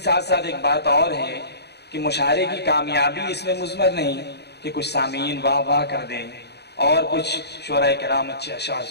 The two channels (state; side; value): late; right; 0.48 ms